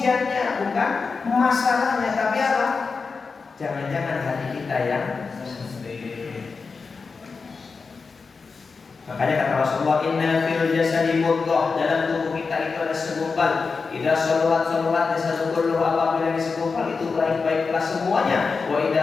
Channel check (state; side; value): quieter; right; 4.7 dB